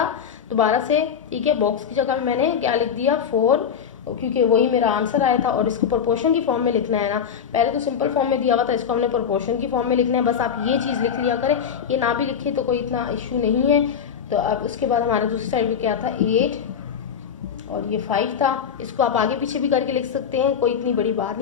दोबारा से, ठीक है, बॉक्स की जगह पे मैंने क्या लिख दिया 4, क्योंकि वही मेरा आंसर आया था, और इसको प्रोपोर्शन की फॉर्म में लिखना है ना, पहले तो सिंपल फॉर्म में दिया हुआ था, इसको हमने प्रोपोर्शन की फॉर्म में लिखना है। बस आप ये चीज़ लिख लिया करें, ये ना भी लिखे तो कोई इतना इशू नहीं है। तो अब उसके बाद हमारा दूसरी साइड पे क्या था 8 और ये 5 था, इसको आप आगे पीछे भी करके लिख सकते हैं, कोई इतनी बड़ी बात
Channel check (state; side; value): quieter; right; 7.5 dB